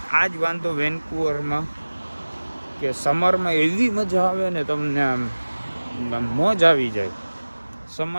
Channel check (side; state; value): both; inverted; correlation -1.00